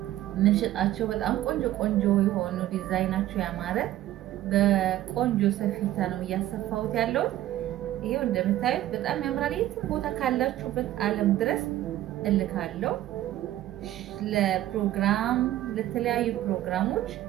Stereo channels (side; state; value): left; quieter; 14.0 dB